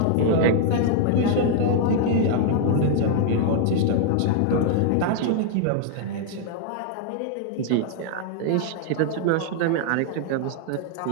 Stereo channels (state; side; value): different; both; correlation 0.00